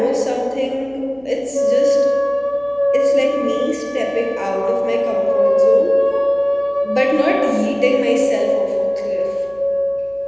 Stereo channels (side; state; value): left; noise; hum, 29 dB below the sound